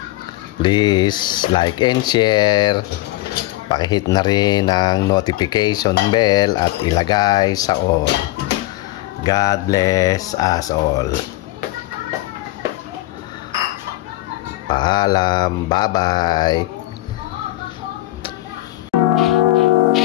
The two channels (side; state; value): right; quieter; 17.8 dB